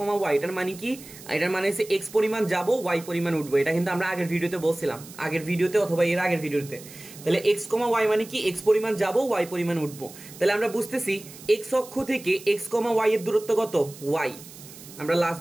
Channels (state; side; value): noise; right; hiss, 17 dB below the sound